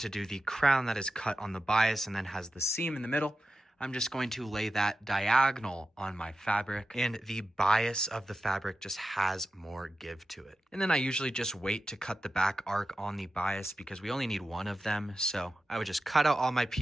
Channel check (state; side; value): normal; both; correlation 0.92